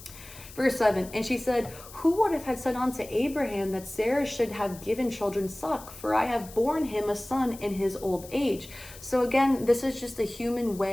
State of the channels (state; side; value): noise; left; hiss, 17 dB below the sound